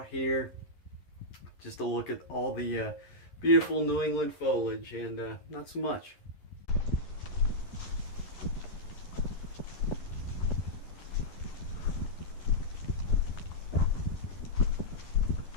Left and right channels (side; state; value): right; late; 11 ms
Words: here. Just to look at all the beautiful New England foliage, and not so much.